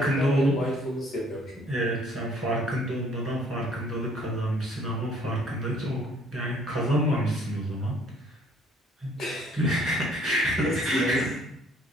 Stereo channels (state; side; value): normal; both; correlation 0.59